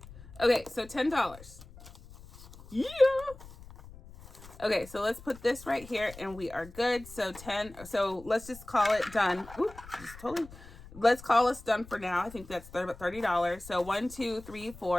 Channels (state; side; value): noise; left; rumble, 18 dB below the sound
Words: Okay, so $10. Yeah. Okay, so let's put this right here and we are good. So 10. So let's just call it done. Ooh, just totally. Let's call us done for now. I think that's about $30. So 1, 2, 3,